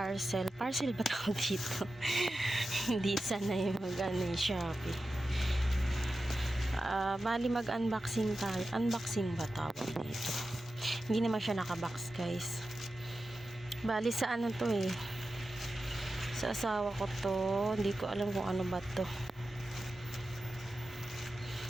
ba tawag dito? Hindi sana yung mag-ano yung Shopee. Bali mag-unboxing tayo. Unboxing ba tawag dito? Hindi naman siya nakabox guys. Bali sa ano to eh, sa asawa ko to. Hindi ko alam kung ano ba to.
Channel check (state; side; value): normal; both; correlation 0.92